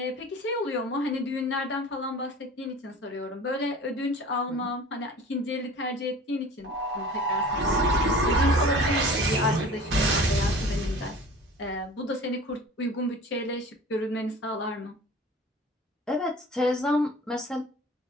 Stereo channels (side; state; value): both; normal; correlation 0.42